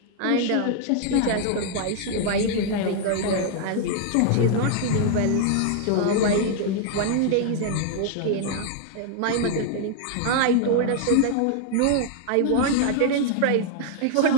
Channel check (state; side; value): different; both; correlation 0.00